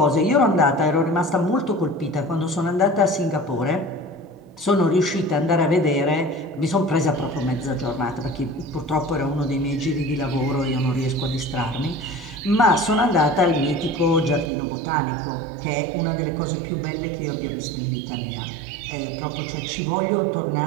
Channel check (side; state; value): left; drops out; at 14.5 s